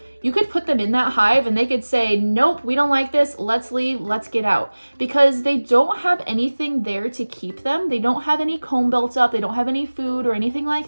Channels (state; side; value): inverted; both; correlation -1.00